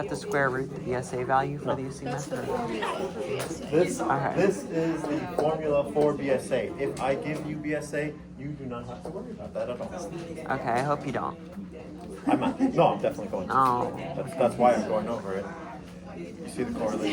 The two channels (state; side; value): identical; both; correlation 1.00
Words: to square root the BSA value for No. the assume That's the method? formula for BSA. Okay. This is the formula for BSA. If I give you BSA, you do not have to worry about that at all. Okay, I hope you don't. I'm not. No, I'm definitely going to. Oh. That's why I'm going over it. You see the